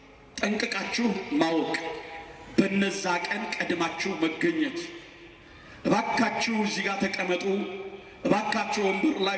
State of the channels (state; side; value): identical; both; correlation 1.00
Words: ጠንቅቃችሁ ማወቅ፣ በነዛ ቀን ቀድማችሁ መገኘት፣ እባካችሁ እዚህ ጋር ተቀመጡ፣ እባካችሁ ወንበር